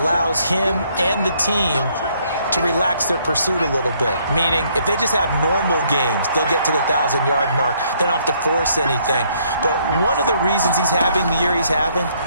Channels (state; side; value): inverted; both; correlation -0.68